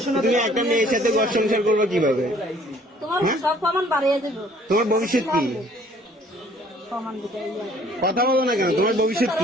তুমি একটা মেয়ের সাথে ঘর সংসার করবে কিভাবে? তোমার ভবিষ্যৎ কি? কথা বলো না কেন? তোমার ভবিষ্যৎ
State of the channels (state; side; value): normal; both; correlation 0.58